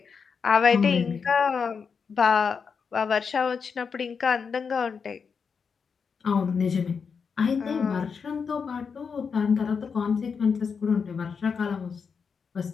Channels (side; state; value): right; quieter; 5.9 dB